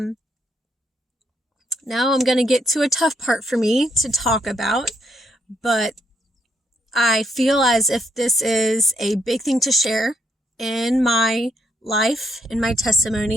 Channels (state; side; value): normal; both; correlation 0.74